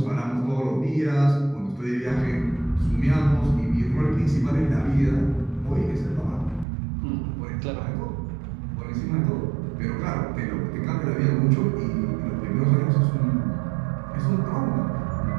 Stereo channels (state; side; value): drops out; left; at 6.7 s